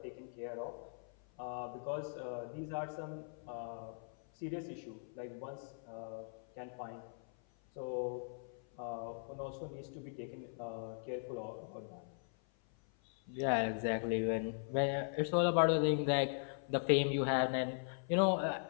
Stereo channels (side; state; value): right; silent; 51 dB below the other